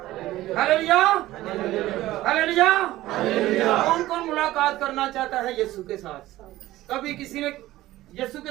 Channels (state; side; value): quieter; left; 16.1 dB